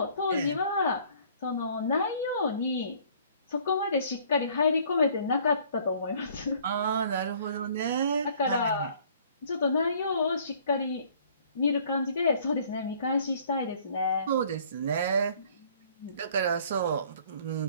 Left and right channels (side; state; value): both; inverted; correlation -0.56